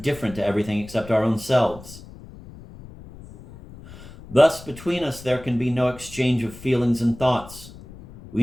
to everything except our own selves. Thus, between us there can be no exchange of feelings and thoughts.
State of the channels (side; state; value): left; noise; rumble, 17 dB below the sound